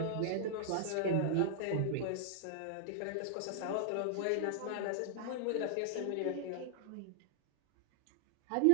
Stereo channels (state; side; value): different; both; correlation -0.01